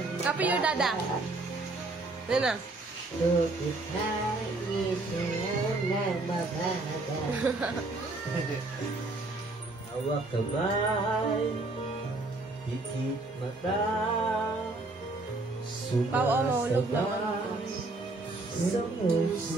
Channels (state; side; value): quieter; left; 3.1 dB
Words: Copy your dada. Yan na. gusto kita'y isayaw ng mabaga. Hawak kamay, pikit mata, Mahulog sumasabay sa